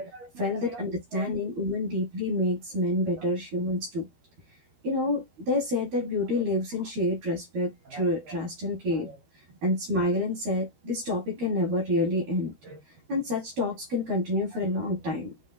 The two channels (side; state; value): left; late; 13 ms